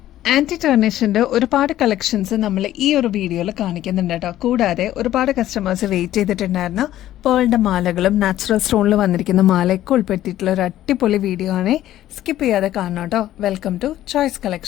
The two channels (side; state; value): right; quieter; 13.3 dB